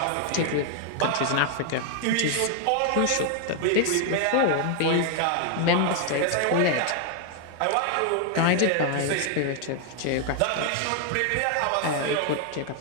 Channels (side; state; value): both; different; correlation 0.00